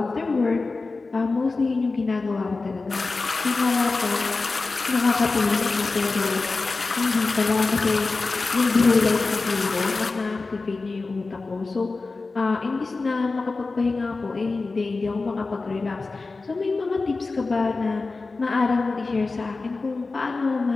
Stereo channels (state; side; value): quieter; right; 3.8 dB